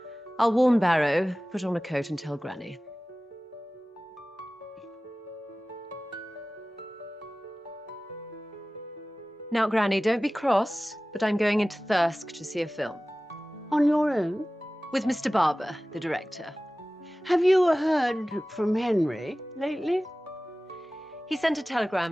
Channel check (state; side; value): normal; both; correlation 0.97